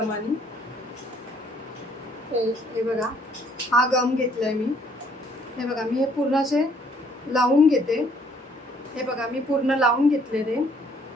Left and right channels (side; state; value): both; normal; correlation 0.63